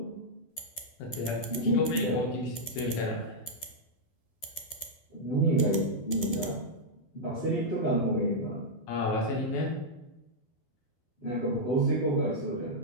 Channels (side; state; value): right; late; 12 ms